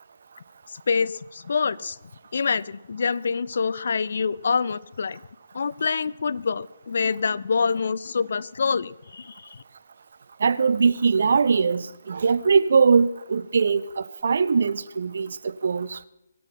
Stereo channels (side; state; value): both; inverted; correlation -0.85